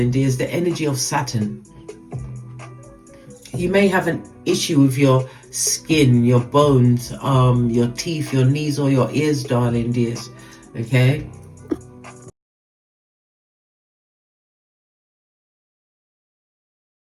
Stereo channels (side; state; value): both; identical; correlation 1.00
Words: dears, the energy of Saturn. You may have an issue with your skin, your bones, your teeth, your knees, or your ears, darling dears. Okay?